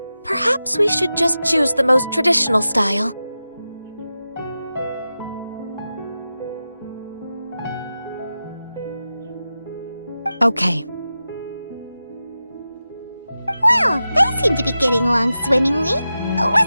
we should just choose the most traditional style. Okay. Well, they seem seem to be getting along swimmingly.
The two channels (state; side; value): inverted; both; correlation -0.93